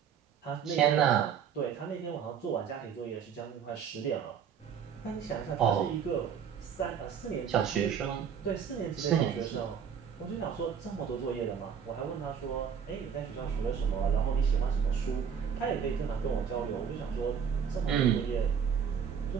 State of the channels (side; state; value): left; quieter; 7.5 dB